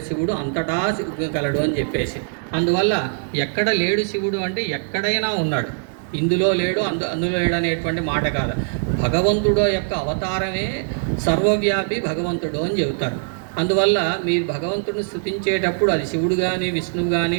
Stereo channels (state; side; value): silent; left; 59 dB below the other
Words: శివుడు అంతటా గలడు అని చెప్పేసి. అందువల్ల ఎక్కడ లేడు శివుడు అంటే ఎక్కడైనా ఉన్నాడు, ఇందులో లేడు అందులో లేడు అనేటువంటి మాట కాదు. భగవంతుడు యొక్క అవతారమే సర్వవ్యాపి భగవంతుడు అని చెబుతారు. అందువల్ల మీరు భగవంతుడిని స్తుతించేటప్పుడు అది శివుడు కానీ విష్ణువు కానీ